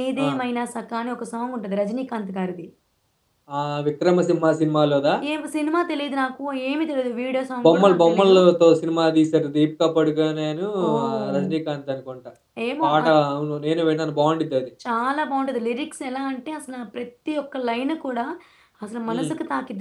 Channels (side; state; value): both; identical; correlation 1.00